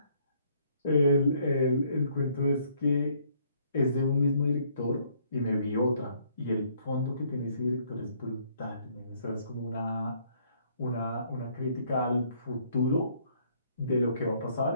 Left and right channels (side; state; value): both; inverted; correlation -0.65